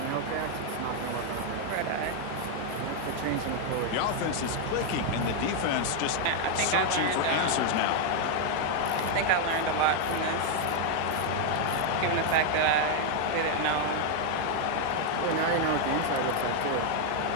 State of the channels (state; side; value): different; both; correlation 0.00